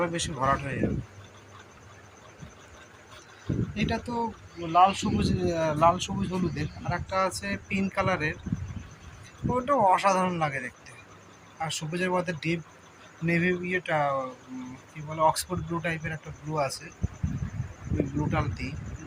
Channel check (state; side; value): identical; both; correlation 1.00